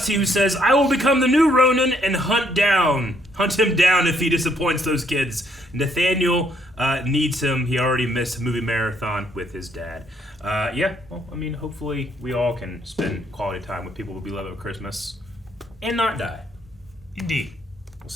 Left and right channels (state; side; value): normal; both; correlation 0.69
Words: who says, I will become the new Ronin and hunt him down if he disappoints those kids. Nathaniel needs him. He already missed a movie marathon with his dad. Well, I mean, hopefully we all can spend quality time with people we love at Christmas and not die. Indeed. We'll